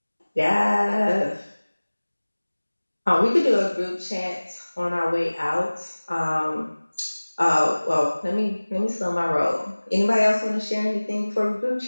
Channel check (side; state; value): both; inverted; correlation -1.00